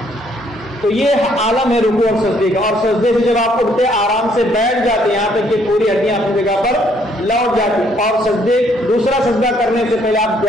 تو یہ عالم ہے رکوع اور سجدے کا، اور سجدے سے جب آپ اٹھتے آرام سے بیٹھ جاتے یہاں تک کہ پوری ہڈیاں اپنی جگہ پر لوٹ جاتی، اور سجدے دوسرا سجدہ کرنے سے پہلے آپ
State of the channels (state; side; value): noise; left; hum, 28 dB below the sound